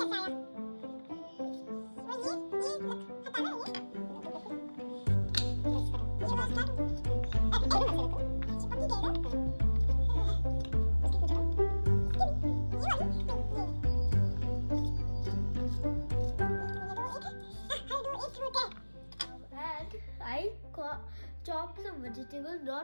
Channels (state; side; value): inverted; both; correlation -1.00